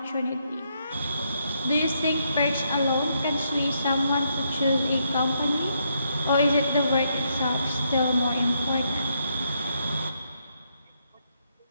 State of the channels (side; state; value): both; inverted; correlation -0.76